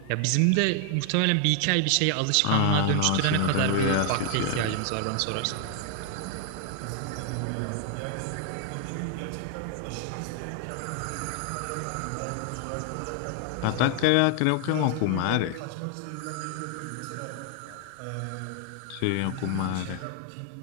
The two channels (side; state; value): both; different; correlation 0.00